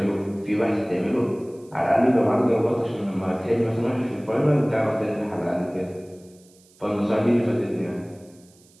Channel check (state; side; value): noise; right; hiss, 29 dB below the sound